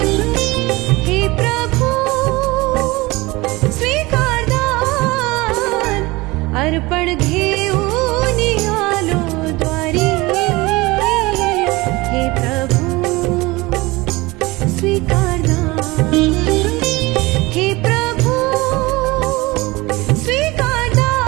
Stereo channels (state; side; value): quieter; left; 22.1 dB